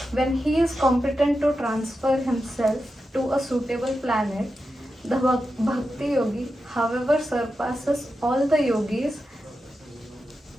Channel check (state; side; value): normal; both; correlation 0.90